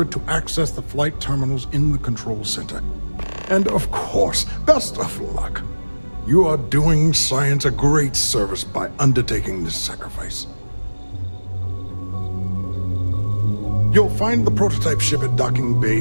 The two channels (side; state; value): both; inverted; correlation -1.00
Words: to access the flight terminals in the control center. And of course, best of luck. You are doing science a great service by undertaking this sacrifice. You'll find the prototype ship at Docking